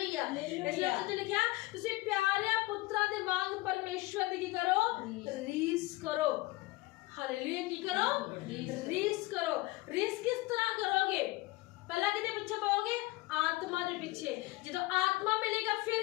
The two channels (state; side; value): quieter; right; 20.7 dB